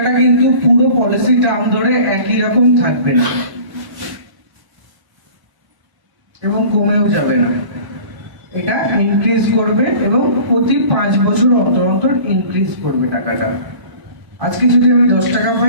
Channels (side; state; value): left; late; 1.1 ms